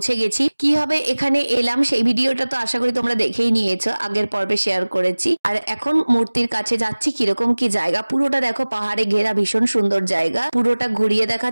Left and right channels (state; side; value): inverted; both; correlation -1.00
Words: গেছি। কিভাবে এখানে এলাম সেই ভিডিওটা তো আশা করি তোমরা দেখেই নিয়েছো, আগের পর্বে শেয়ার করেছি। আর এখন মূর্তির কাছে যাচ্ছি। কিরকম কি জায়গা পুরোটা দেখো, পাহাড়ে ঘেরা ভীষণ সুন্দর জায়গা। পুরোটা ঘুরিয়ে